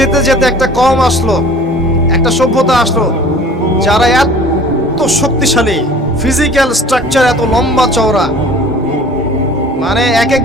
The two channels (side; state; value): both; normal; correlation 0.47